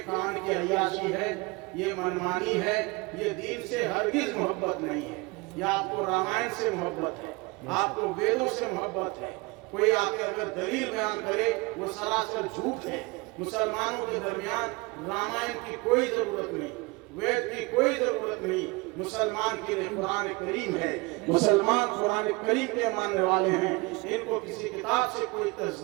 کان کی عیاشی ہے، یہ منمانی ہے، یہ دین سے ہرگز محبت نہیں ہے۔ یا آپ کو رامائن سے محبت ہے، آپ کو ویدوں سے محبت ہے۔ کوئی آ کے اگر دلیل بیان کرے وہ سراسر جھوٹ ہے۔ مسلمانوں کے درمیان رامائن کی کوئی ضرورت نہیں۔ وید کی کوئی ضرورت نہیں. مسلمان کے لیے قرآن کریم ہے. مسلمان قرآن کریم کے ماننے والے ہیں. ان کو کسی کتاب سے کوئی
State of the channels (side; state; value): left; quieter; 25.5 dB